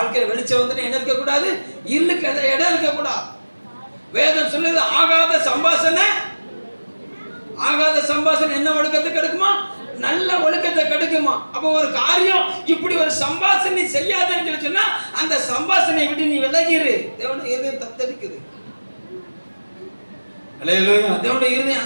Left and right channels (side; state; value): both; inverted; correlation -1.00